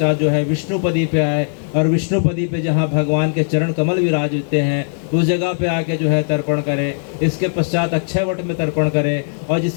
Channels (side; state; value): right; silent; digital silence